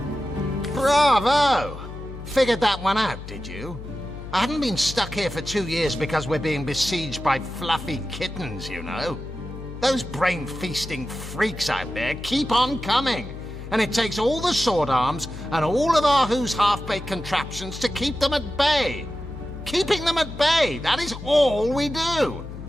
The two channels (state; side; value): noise; left; hum, 11 dB below the sound